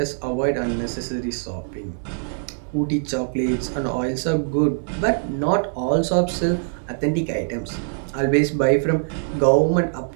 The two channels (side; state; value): left; silent; digital silence